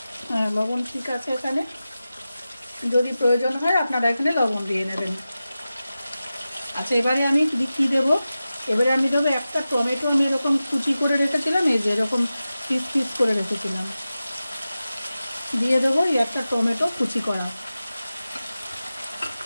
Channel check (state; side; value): inverted; both; correlation -0.94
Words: হ্যাঁ, লবণ ঠিক আছে এখানে, যদি প্রয়োজন হয় আপনারা এখানে লবণ দিয়ে নেবেন। আচ্ছা, এবারে আমি কী দেবো, এবারে আমি দেবো একটা টমেটো, আমি এরকম কুচি করে রেখেছিলাম, এই যে এরকম পিস পিস করে রেখেছিলাম, দিয়ে দেবো এই একটা টমেটো কুচি করা।